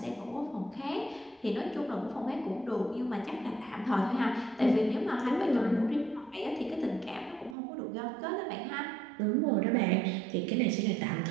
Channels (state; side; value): drops out; left; at 7.6 s